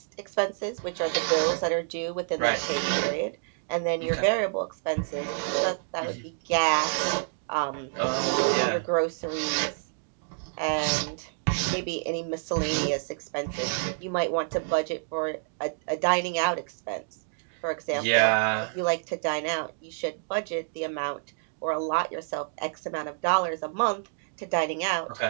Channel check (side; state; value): left; silent; digital silence